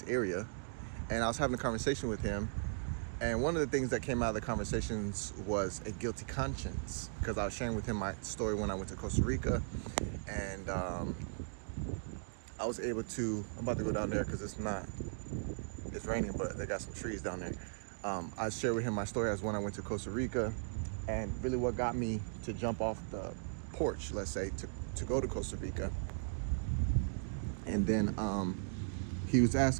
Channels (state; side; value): silent; left; digital silence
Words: area, and I was having a conversation with him. And one of the things that came out of the conversations was a guilty conscience, because I was sharing with him my story when I went to Costa Rica, and I was able to, I'm about to go down there because it's raining, but they got some trees down there. I shared with him my story as when I went to Costa Rica, and really what got me to jump off the porch, let's say, to go to Costa Rica. And then he was